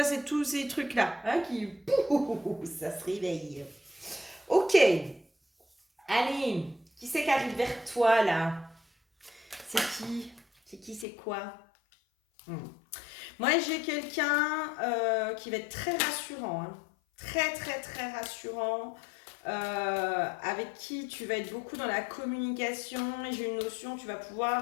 c'est tous ces trucs-là hein, qui... Pouh, ça se réveille. Ok, allez, qui c'est qui arrive vers toi là? C'est qui? C'est qui, c'est quoi? Hmm. Moi, j'ai quelqu'un qui va être très rassurant, hein. Très, très, très rassurant. Avec qui tu vas être beaucoup dans la communication et j'ai une notion, tu vas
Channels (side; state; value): right; drops out; at 11.1 s